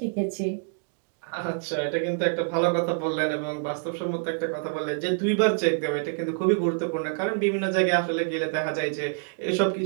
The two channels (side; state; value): left; silent; digital silence